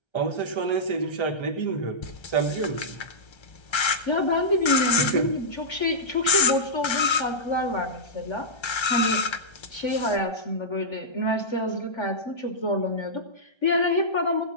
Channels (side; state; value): right; late; 1.3 ms